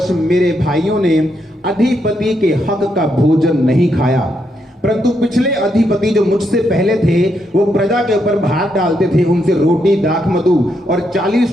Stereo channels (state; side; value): normal; both; correlation 0.79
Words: मेरे भाइयों ने अधिपति के हक का भोजन नहीं खाया, परंतु पिछले अधिपति जो मुझसे पहले थे वो प्रजा के ऊपर भार डालते थे, उनसे रोटी दाख मधु और